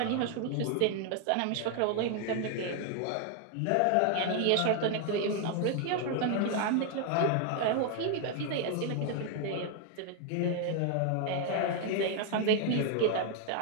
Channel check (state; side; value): different; both; correlation 0.00